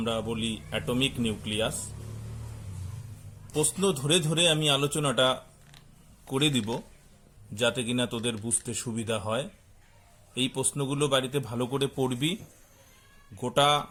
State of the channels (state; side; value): identical; both; correlation 1.00